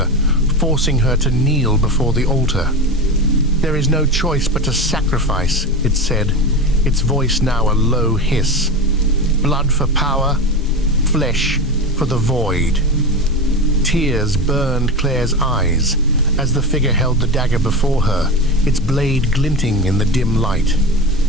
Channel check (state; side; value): normal; both; correlation 0.23